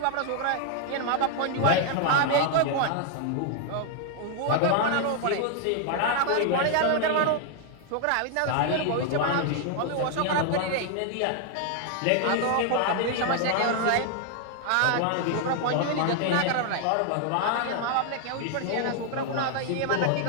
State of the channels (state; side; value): different; both; correlation 0.00